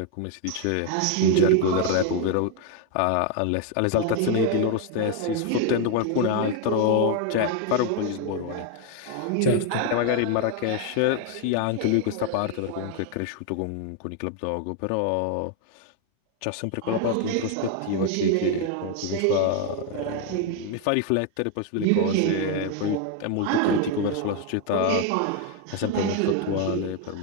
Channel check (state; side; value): different; both; correlation 0.01